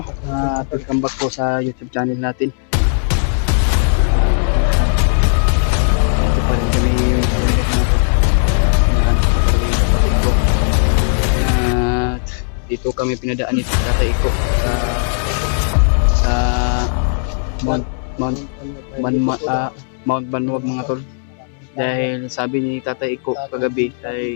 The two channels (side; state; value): right; silent; digital silence